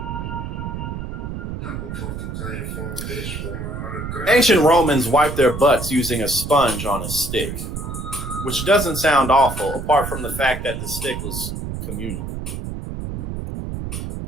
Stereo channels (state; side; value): noise; right; rumble, 6 dB below the sound